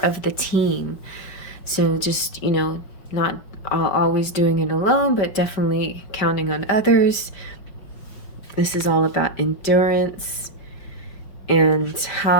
the team. So just, you know, not always doing it alone, but definitely counting on others. This is all about endurance and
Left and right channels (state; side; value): late; right; 5.1 ms